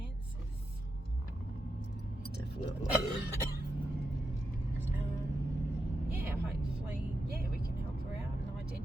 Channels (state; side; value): normal; both; correlation 0.86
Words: Definitely. Hopefully, we can help her out and